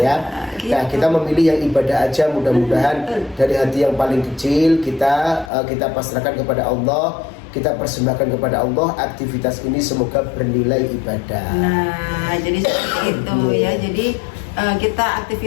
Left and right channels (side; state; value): right; drops out; at 5.5 s